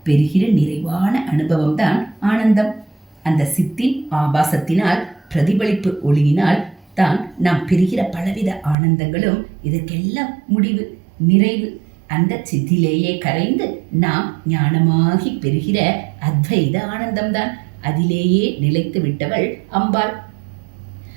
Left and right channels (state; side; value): drops out; left; at 8.8 s